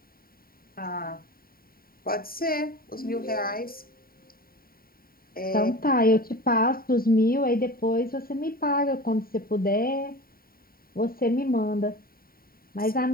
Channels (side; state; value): right; late; 0.43 ms